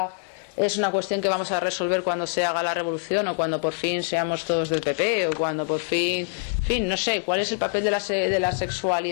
es una cuestión que vamos a resolver cuando se haga la revolución o cuando por fin seamos todos del PP o cuando por fin, en fin, no sé, cuál es el papel de la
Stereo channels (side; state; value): right; silent; digital silence